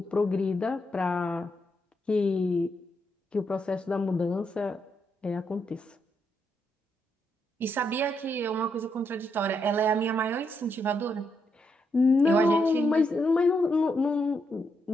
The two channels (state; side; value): normal; both; correlation 0.79